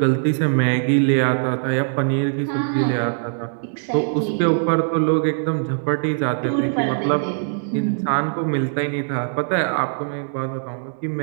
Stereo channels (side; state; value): left; silent; digital silence